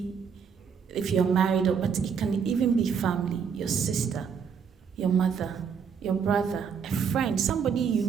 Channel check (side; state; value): left; quieter; 6.7 dB